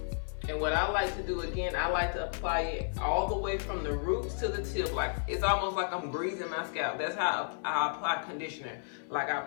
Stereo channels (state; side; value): silent; right; 56 dB below the other